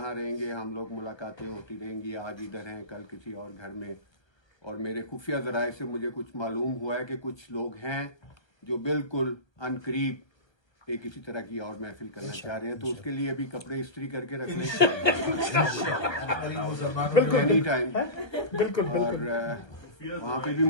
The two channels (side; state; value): right; late; 1.3 ms